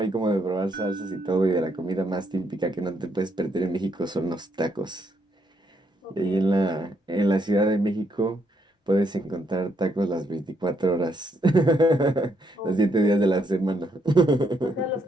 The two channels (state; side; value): normal; both; correlation 0.75